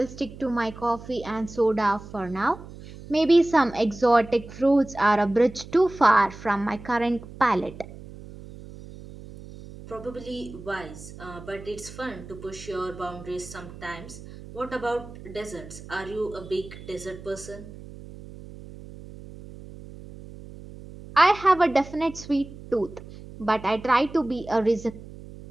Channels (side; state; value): right; noise; hum, 16 dB below the sound